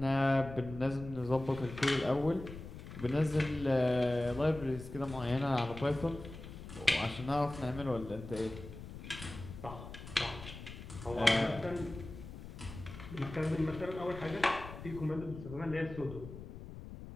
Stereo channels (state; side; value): noise; left; rumble, 12 dB below the sound